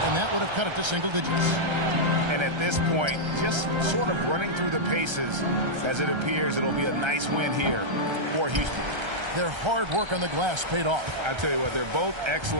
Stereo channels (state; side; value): late; left; 1.3 ms